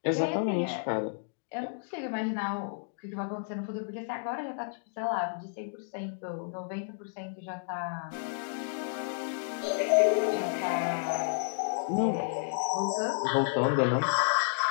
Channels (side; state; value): right; silent; digital silence